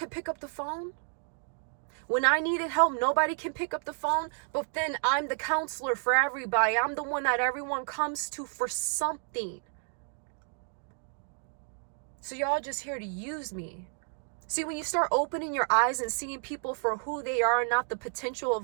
pick up the phone. When I needed help, nobody can pick up the phone, but then I'm the counselor for everybody. I'm the one that everyone comes to for something. So y'all just here to use me. See, when you start opening your eyes and seeing people for who they are and not the potential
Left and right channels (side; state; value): left; silent; 57 dB below the other